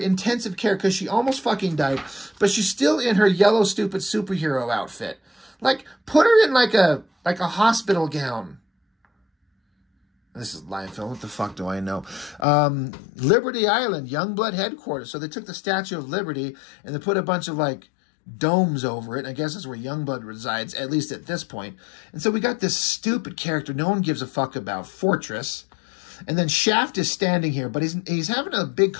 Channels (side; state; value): right; drops out; at 12.5 s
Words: care because she almost fucking died. But she's still in her yellow, stupid superhero outfit. Like, put her in like a hospital gown. This is live film. What the fuck do I know? Liberty Island, Youngblood headquarters. So they took the Statue of Liberty and they put a bunch of like domes over it. I guess that's where Youngblood resides, at least at this point. And so we got this stupid character no one gives a fuck about, Fortress. And then Shaft is standing here, but he's having a big